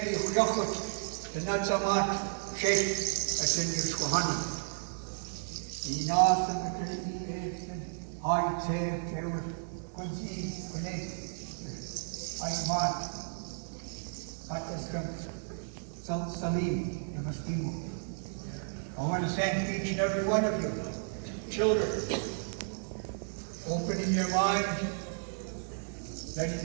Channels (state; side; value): silent; left; digital silence